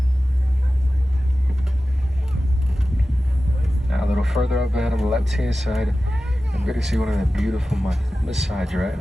Now a little further up ahead on the left-hand side, I'm going to see one of the beautiful Maasai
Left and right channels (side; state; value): both; normal; correlation 0.95